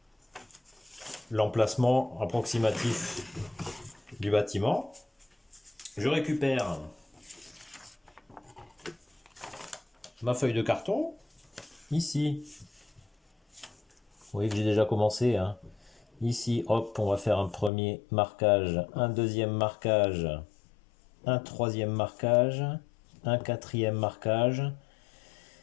l'emplacement approximatif du bâtiment. Je récupère ma feuille de carton, ici. Vous voyez que j'ai déjà commencé, hein. Ici, hop, on va faire un premier marquage, un deuxième marquage, un troisième marquage, un quatrième marquage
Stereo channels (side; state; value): right; drops out; at 17.7 s